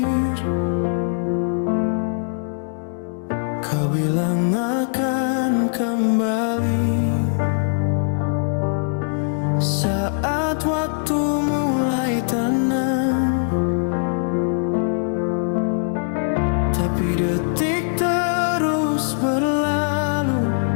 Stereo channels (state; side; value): silent; right; 65 dB below the other